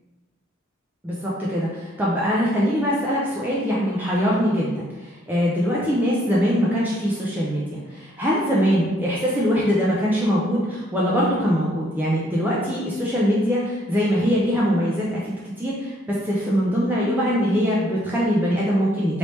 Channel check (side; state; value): both; normal; correlation 0.67